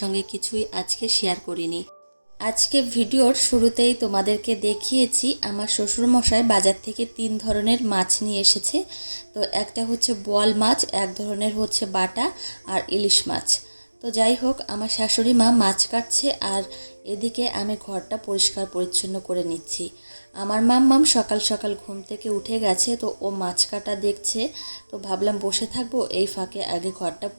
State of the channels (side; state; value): both; inverted; correlation -1.00